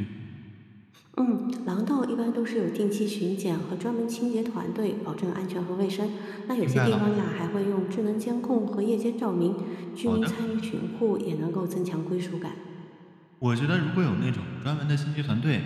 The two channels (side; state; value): both; identical; correlation 1.00